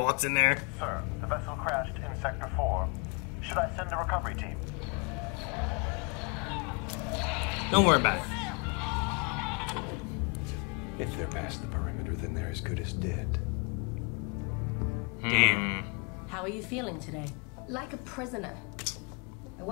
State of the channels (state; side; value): quieter; right; 31.8 dB